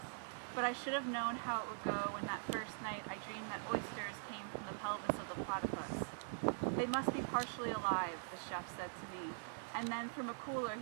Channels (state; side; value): silent; left; digital silence